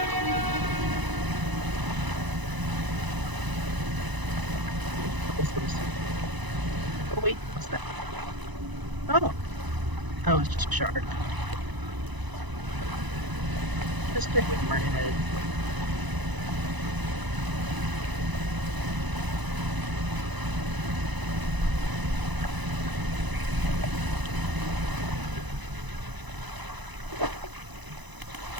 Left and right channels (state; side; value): late; left; 1.0 ms